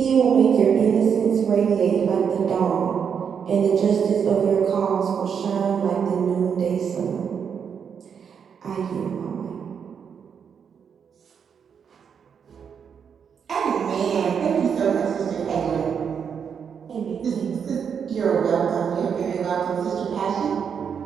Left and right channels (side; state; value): left; quieter; 7.1 dB